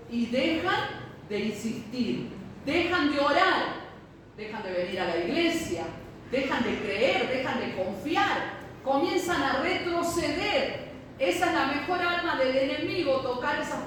y dejan de insistir, dejan de orar, dejan de venir a la iglesia, dejan de creer, dejan de confiar, comienzan a retroceder. Esa es la mejor arma del enemigo, tocar a esas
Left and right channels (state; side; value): identical; both; correlation 1.00